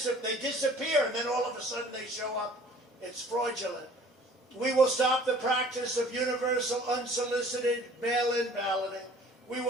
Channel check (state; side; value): normal; both; correlation 0.51